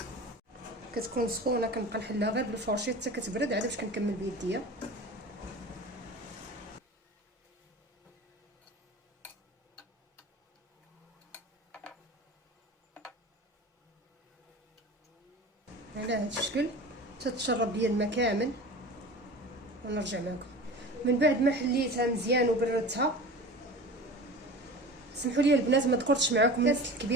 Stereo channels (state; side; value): normal; both; correlation 0.35